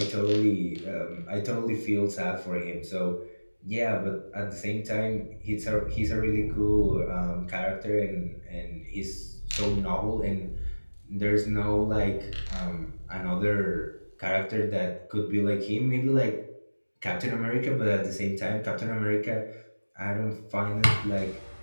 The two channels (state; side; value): inverted; both; correlation -1.00